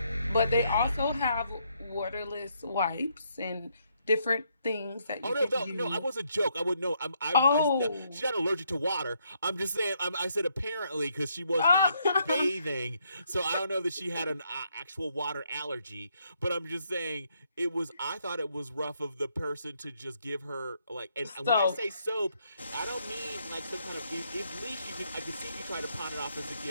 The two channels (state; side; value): inverted; both; correlation -0.74